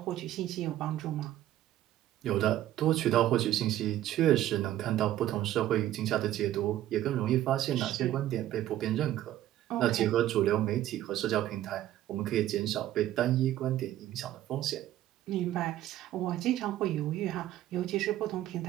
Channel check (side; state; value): left; quieter; 13.3 dB